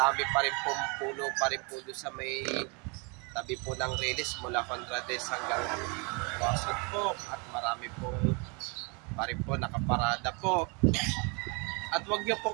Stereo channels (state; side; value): quieter; left; 32.2 dB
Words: pa rin po, puno pa rin po doon sa may tabi po ng Release mula Contrades hanggang Pasod po, at marami pong pa rin po nakaparada po. At huwag niyo pong